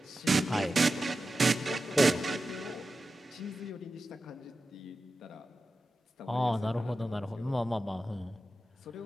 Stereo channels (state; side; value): normal; both; correlation 0.93